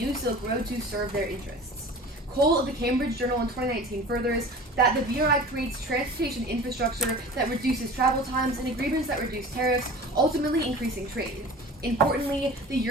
Silk Road to serve their interests. Cole of the Cambridge Journal in 2019 furthers that the BRI creates transportation infrastructure that reduces travel times and agreements that reduce tariffs, ultimately increasing trade. Importantly, the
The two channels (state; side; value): normal; both; correlation 0.39